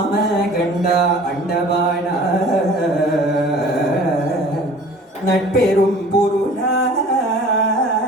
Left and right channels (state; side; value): normal; both; correlation 0.46